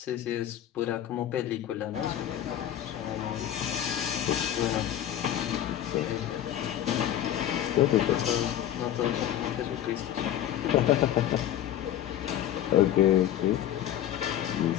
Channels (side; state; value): right; quieter; 11.5 dB